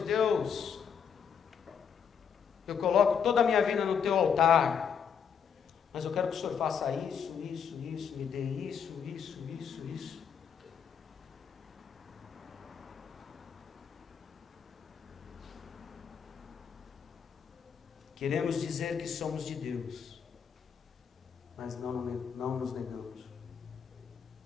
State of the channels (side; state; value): right; quieter; 7.2 dB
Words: Deus, eu coloco toda a minha vida no teu altar, mas eu quero que o Senhor faça isso, me dê isso. Queremos dizer que somos de Deus, mas não nos negamos.